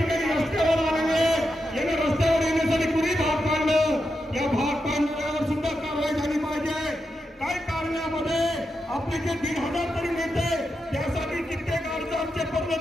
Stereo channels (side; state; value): both; normal; correlation 0.87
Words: रस्त्यावर आलेले, यांना रस्त्यावर येण्यासाठी कुणी भाग पाडलं? या भाग पाडणाऱ्यावर सुद्धा कारवाई झाली पाहिजे. काय कारणामध्ये आपले जे 1,500 तरी नेते त्यासाठी कित्येक अर्ज आमचे